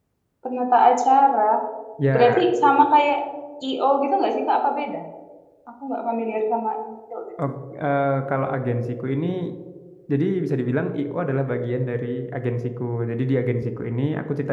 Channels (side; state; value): both; identical; correlation 1.00